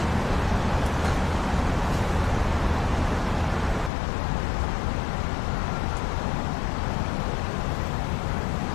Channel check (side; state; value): right; drops out; at 3.9 s